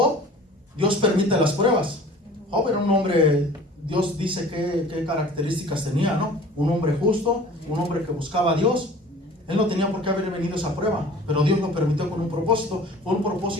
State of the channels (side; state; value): both; normal; correlation 0.46